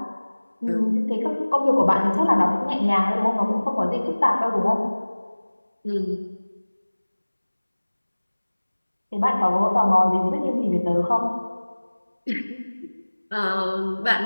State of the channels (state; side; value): inverted; both; correlation -1.00